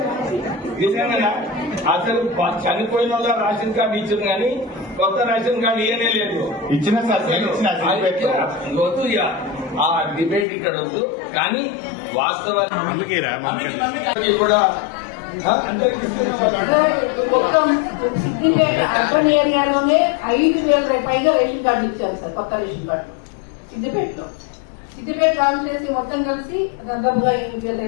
నిజంగా అసలు చనిపోయిన వాళ్ళ రేషన్ కార్డు ఇచ్చింది కానీ కొత్త రేషన్ కార్డు ఇవ్వనే లేదు. ఇచ్చిన సార్ వద్దు ఆ డిబేట్ ఇక్కడ వద్దు. కానీ వాస్తవాలు కూడా సిద్దిపేట అర్బన్ ఏరియాలోనే 5,000 పైగా రేషన్ కార్డు ఇచ్చారు సార్, కొత్త రేషన్ కార్డు సిద్దిపేటలో. సిద్దిపేట కాన్స్టిట్యూన్సీ మొత్తం కలిసి దాదాపుగా 5,000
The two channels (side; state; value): right; drops out; at 10.5 s